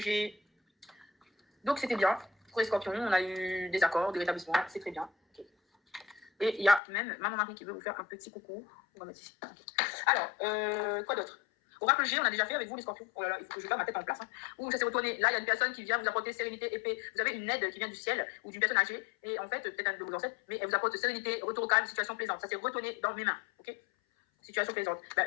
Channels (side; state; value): right; drops out; at 6.8 s